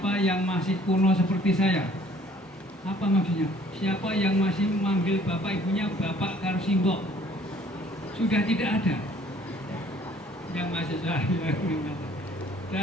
yang masih kuno seperti saya. Apa maksudnya? Siapa yang masih memanggil bapak ibunya bapak karo simbok? Sudah tidak ada yang mahasiswa.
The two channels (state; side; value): normal; both; correlation 0.57